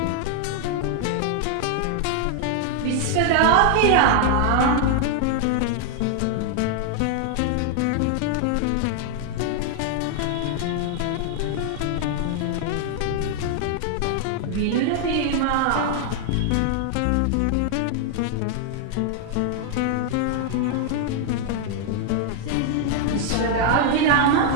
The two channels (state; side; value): different; both; correlation 0.00